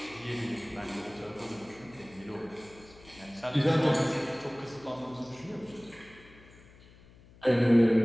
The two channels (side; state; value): left; noise; hum, 24 dB below the sound